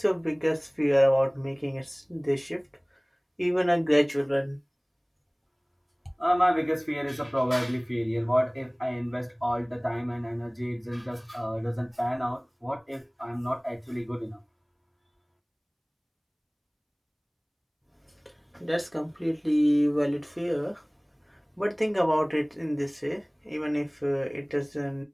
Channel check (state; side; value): identical; both; correlation 1.00